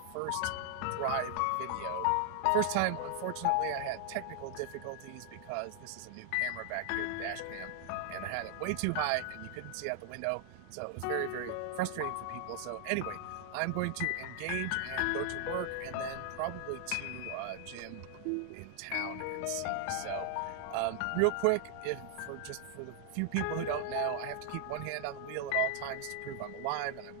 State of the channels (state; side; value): different; both; correlation 0.00